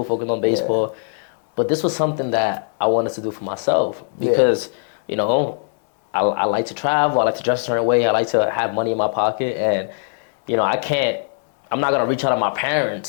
focus on baseball. Yeah. But this was something that I wanted to do for myself because I like to travel, I like to dress a certain way, I like to have money in my pocket, and I'm not gonna reach out to my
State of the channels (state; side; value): silent; right; digital silence